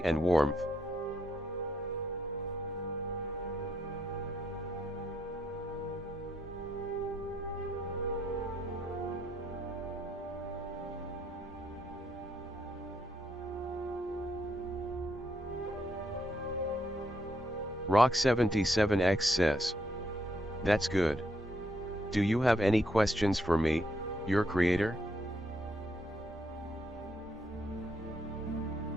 and warmth. Rock77X says. That's good. Do you have any questions for me, your creator?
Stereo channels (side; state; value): both; normal; correlation 0.75